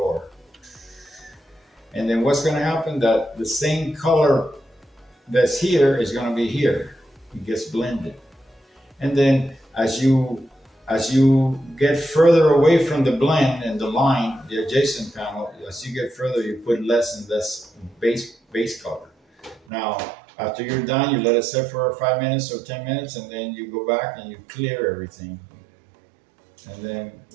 And then what's gonna happen, that the same color that's here is gonna be here. It gets blended. And then as you get further away from the blend and the line, the adjacent panel, as you get further, you put less and less base color. Now, after you're done, you let it sit for 5 minutes or 10 minutes, and then you go back and you clear everything. And then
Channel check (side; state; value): left; drops out; at 19.6 s